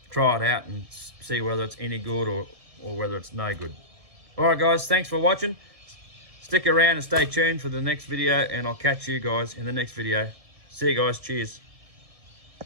try it out and see whether it's any good or whether it's no good. All right, guys, thanks for watching. Stick around and stay tuned for the next video, and I'll catch you guys in the next video. See you guys. Cheers.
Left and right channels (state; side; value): late; left; 1.7 ms